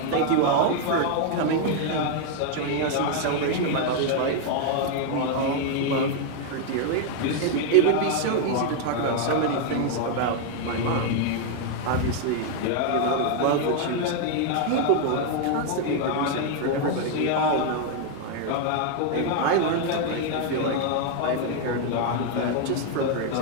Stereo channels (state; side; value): different; both; correlation 0.00